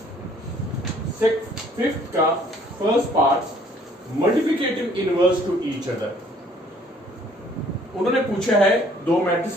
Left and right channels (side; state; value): both; normal; correlation 0.59